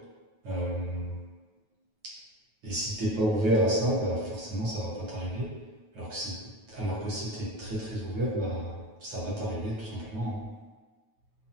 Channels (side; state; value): left; late; 9.3 ms